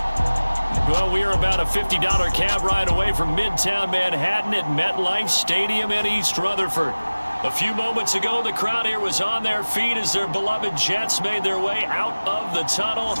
Well, we are about a $50 cab ride away from Midtown Manhattan at MetLife Stadium in East Rutherford. A few moments ago, the crowd here was on their feet as their beloved Jets made their way out of the tunnel.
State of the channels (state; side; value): inverted; both; correlation -1.00